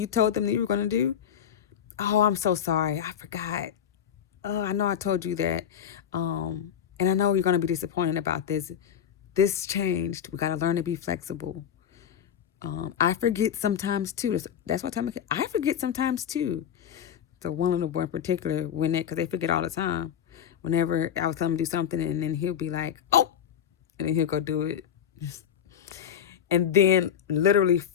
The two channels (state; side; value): quieter; right; 9.1 dB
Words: told them that you were going to do. Oh, I'm so sorry. I forgot. Oh, I know I told you that. And I know you're going to be disappointed about this. This changed. We got to learn to be flexible. I forget sometimes too. That's what time I forget sometimes too. So one little boy in particular, because they forget all the time. Whenever I was telling him to do something, and then he'll be like, "Oh," and then he'll go do it. And then literally